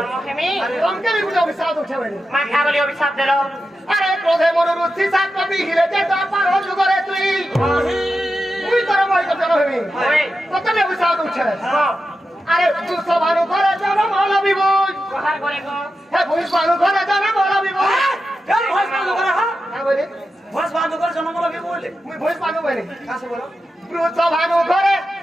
হেমি রঙকে বি গুটে অভিশাপ উঠেবেনি মা কে বলি অভিশাপ দিল আরে ক্রোধে মনোরুচি সাত কবি হিলে যে দাপা রোজ করে তুই তুই তোর মই কর জনো বেবি কতনে অভিশাপ উঠে আরে তুই সবারু ঘরে জনো ভালো বিবুই কোহার করে গো হে ভুই সবারু ঘরে জনো ভালো বিবুই কেন ভয় পানো করে হ্যাঁ হ্যাঁ বলি ভয় পানো করে জন্ম লাগবে বলে মুই ভুই পানো বলি কাছে বলো ব্রুত ভানু ঘরে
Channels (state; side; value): normal; both; correlation 0.90